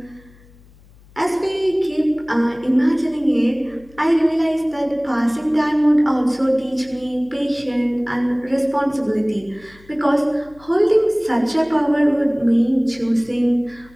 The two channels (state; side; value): noise; left; hum, 26 dB below the sound